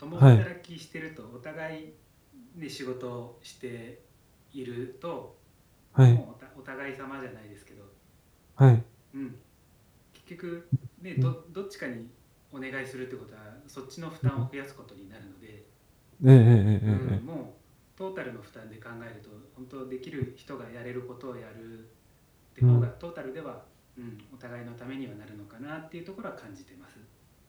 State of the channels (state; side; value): identical; both; correlation 1.00